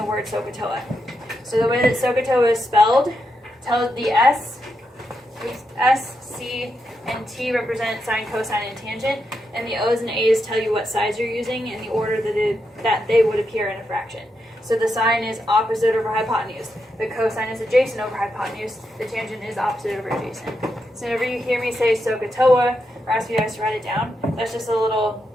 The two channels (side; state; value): both; normal; correlation 0.84